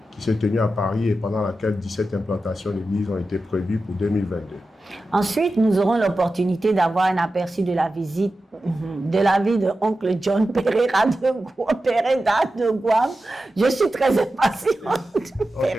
qui s'est tenu à Paris et pendant laquelle 17 implantations d'églises ont été prévues pour 2022. Ensuite, nous aurons l'opportunité d'avoir un aperçu de la visite de la vie de oncle John Pereira de Guam. Je suis très impatiente.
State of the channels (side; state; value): both; normal; correlation 0.93